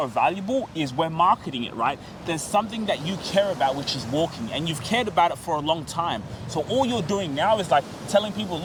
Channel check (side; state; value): both; identical; correlation 1.00